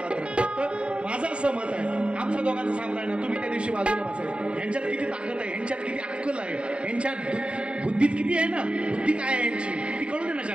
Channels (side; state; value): left; late; 0.057 ms